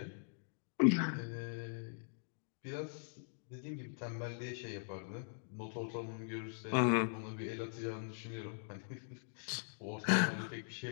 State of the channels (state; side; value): silent; right; digital silence